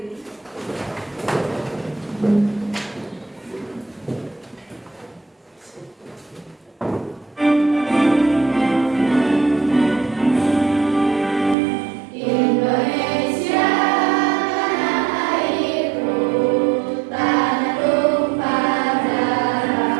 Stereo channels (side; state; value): left; drops out; at 11.6 s